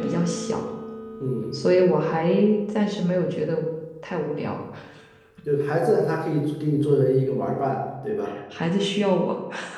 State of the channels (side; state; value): both; identical; correlation 1.00